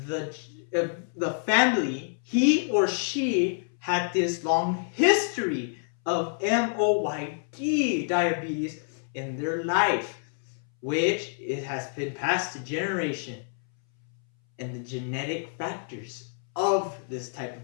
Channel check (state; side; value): silent; right; 60 dB below the other